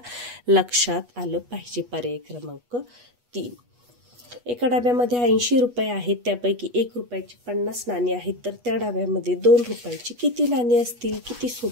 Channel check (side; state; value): left; late; 8.2 ms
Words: लक्षात आलं पाहिजे. पर्याय क्रमांक 3. एका डब्यामध्ये 80 रुपये आहेत, त्यापैकी 1 रुपयाची 50 नाणी आहेत, तर त्या डब्यामध्ये 2 रुपयाची किती नाणी असतील. किती